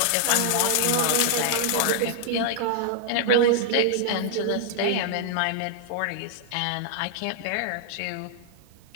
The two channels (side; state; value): both; different; correlation -0.01